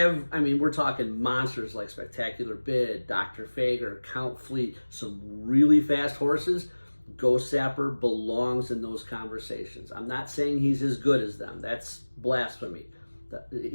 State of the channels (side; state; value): both; inverted; correlation -1.00